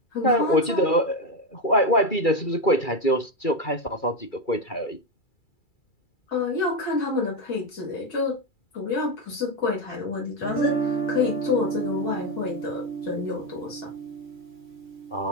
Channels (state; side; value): late; right; 2.3 ms